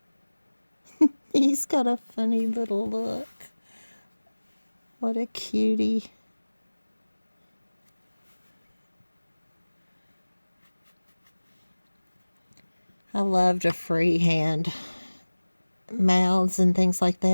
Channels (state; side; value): inverted; both; correlation -1.00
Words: He's got a funny little look. What a cutie. I love to freehand mouths and things like